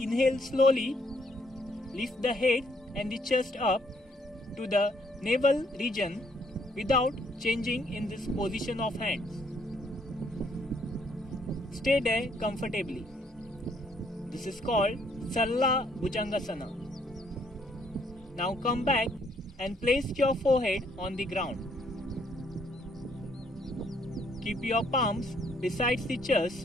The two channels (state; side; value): normal; both; correlation 0.69